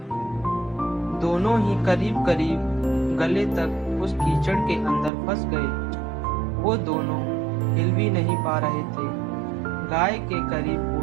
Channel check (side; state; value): left; drops out; at 5.1 s